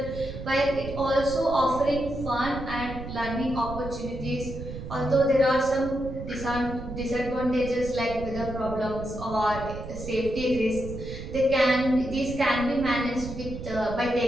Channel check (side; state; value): right; noise; rumble, 9 dB below the sound